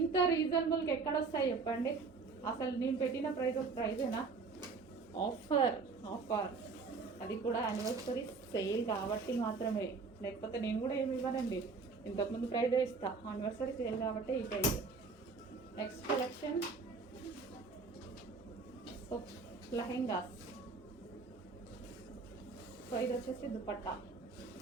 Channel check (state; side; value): quieter; left; 4.4 dB